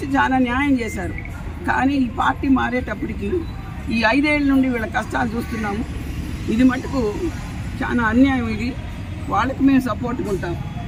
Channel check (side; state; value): both; identical; correlation 1.00